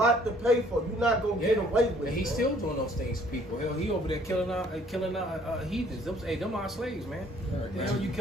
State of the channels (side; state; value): both; normal; correlation 0.59